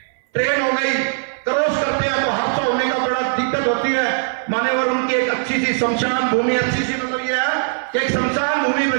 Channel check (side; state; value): left; silent; 61 dB below the other